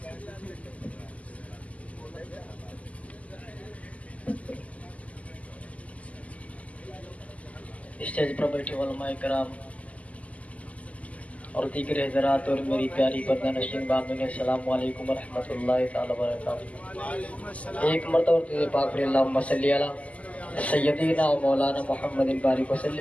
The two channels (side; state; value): right; late; 0.069 ms